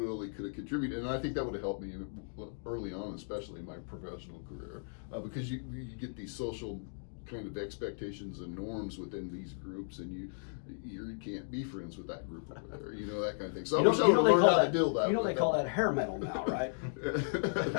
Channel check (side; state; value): right; silent; digital silence